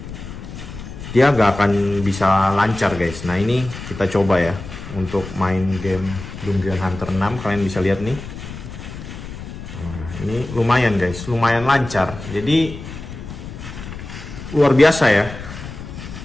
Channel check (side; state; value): left; noise; rumble, 11 dB below the sound